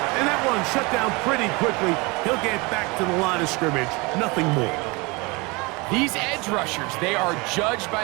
And that one shut down pretty quickly. He'll get back to the line of scrimmage. Nothing more. These edge rushers, they are judged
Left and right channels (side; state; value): left; quieter; 26.5 dB